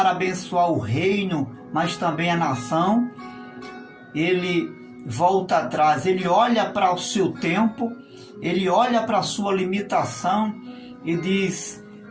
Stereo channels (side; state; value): both; identical; correlation 1.00